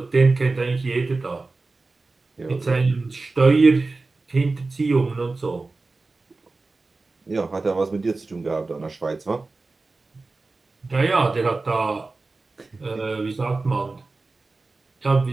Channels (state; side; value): quieter; left; 3.6 dB